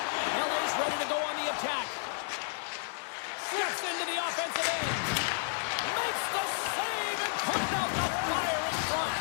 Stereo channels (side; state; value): right; silent; digital silence